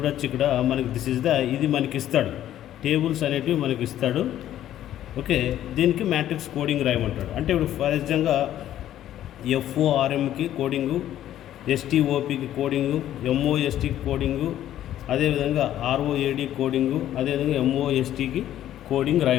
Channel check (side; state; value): right; quieter; 12.1 dB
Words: ఇక్కడ మనకి ఇది మనకి ఇస్తాడు, టేబుల్స్ అనేటివి మనకి ఇస్తాడు. ఓకే, దీనికి మ్యాట్రిక్స్ కోడింగ్ రాయమంటాడు. అంటే ఇప్పుడు ఫర్ ఎగ్జాంపుల్గా FORMకి కోడింగు, STOPకి కోడింగు, MOSTకి కోడింగు, అదేవిధంగా ROAD కోడింగు, అదేవిధంగా MOSTకి కోడింగ్